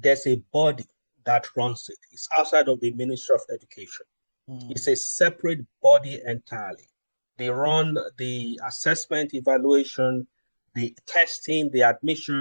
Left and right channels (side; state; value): both; inverted; correlation -1.00